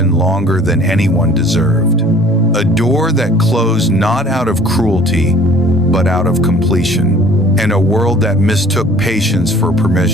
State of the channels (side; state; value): both; normal; correlation 0.51